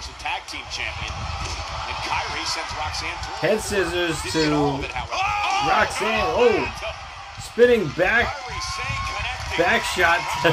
a tag team champion. And Kairi sends Roxanne to Head scissors Didn't get all of to it, however. Roxanne. Oh, spinning back Kairi Sane connecting. back shot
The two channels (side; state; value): both; identical; correlation 1.00